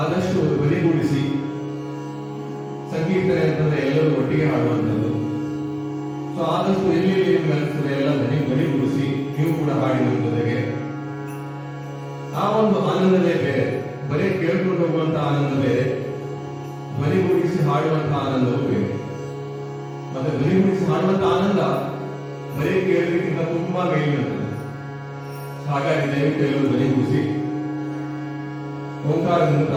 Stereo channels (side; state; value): both; identical; correlation 1.00